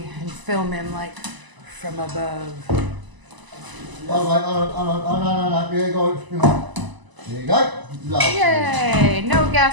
and film him like from above. Oh, no. There you go. There you go. Lovely. Yay! No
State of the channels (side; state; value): left; late; 1.0 ms